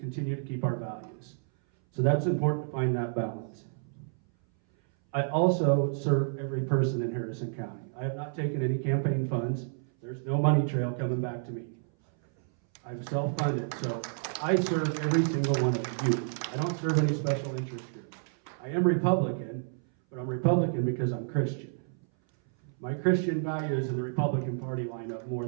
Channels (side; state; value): left; silent; 58 dB below the other